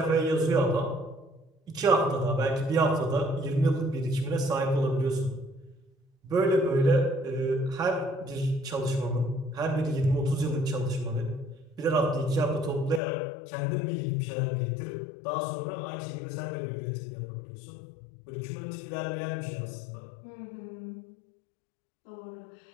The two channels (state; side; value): drops out; right; at 13.0 s